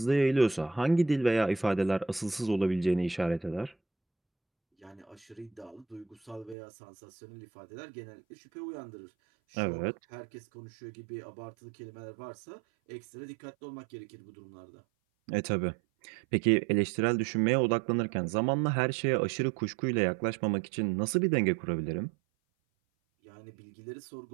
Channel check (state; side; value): drops out; left; at 6.6 s